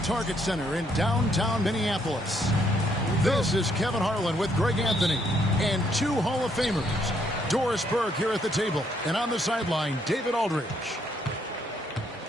Center in downtown Minneapolis. This is Kevin Harlan with Greg Anthony and two Hall of Famers. Doris Burke here at the table, and on the sideline, David Aldridge.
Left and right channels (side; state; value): both; normal; correlation 0.71